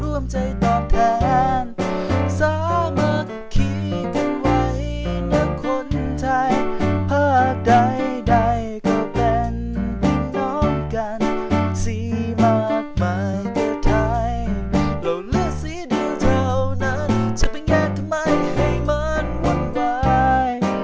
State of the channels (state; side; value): identical; both; correlation 1.00